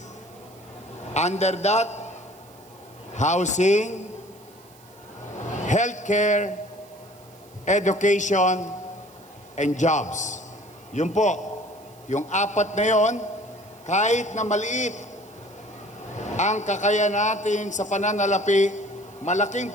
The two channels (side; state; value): right; noise; hiss, 26 dB below the sound